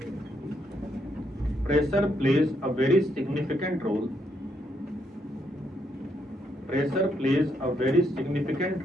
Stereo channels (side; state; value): both; normal; correlation 0.76